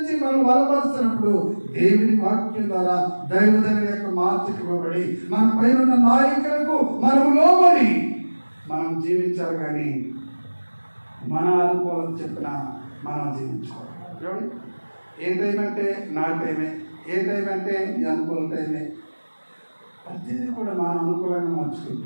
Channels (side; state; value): both; inverted; correlation -1.00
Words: మనం బలపరుస్తున్నప్పుడు దేవుని వాక్యం ద్వారా దైవజనుడి యొక్క మార్పుకి ఇవ్వబడి మన పైన నాయకులకు మనం లోబడి మనం జీవించాలి. కానీ మన అనుకూలత చెప్పిన మనం జీవించుకోవాలి. ఏ టైం అంటే నా టైమే, ఏ టైం అంటే నీ అనుకూల టైమే. ప్రతిదీ కూడా మనం అనుకూలంగా